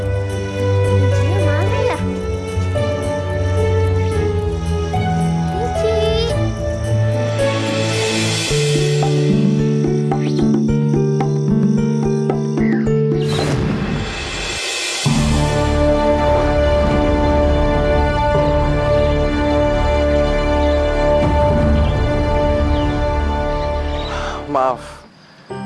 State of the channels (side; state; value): both; identical; correlation 1.00